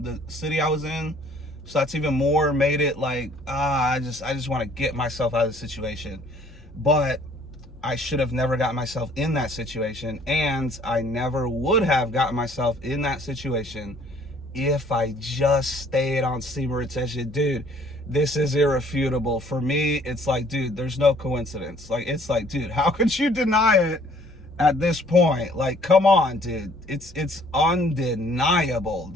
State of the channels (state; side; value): normal; both; correlation 0.58